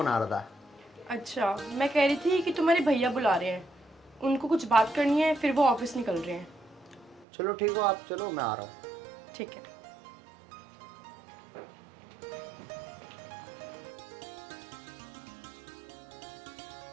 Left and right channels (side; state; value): left; drops out; at 7.2 s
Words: आ रहा था। अच्छा, मैं कह रही थी कि तुम्हारे भैया बुला रहे हैं, उनको कुछ बात करनी है, फिर वो ऑफिस निकल रहे हैं। चलो ठीक हो, आप चलो, मैं आ रहा हूँ। ठीक है।